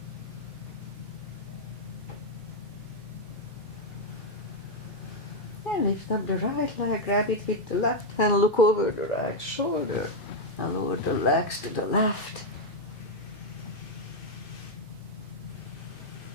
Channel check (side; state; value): both; normal; correlation 0.01